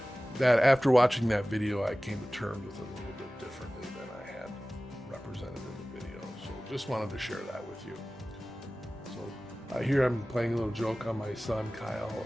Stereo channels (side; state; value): both; normal; correlation 0.97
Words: that after watching that video, I came to terms with it a little bit differently than I had represented in the video. So just wanted to share that with you. So here I'm playing a little joke on my son, Kyle.